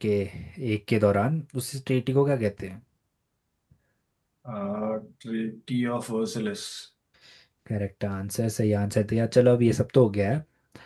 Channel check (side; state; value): both; identical; correlation 1.00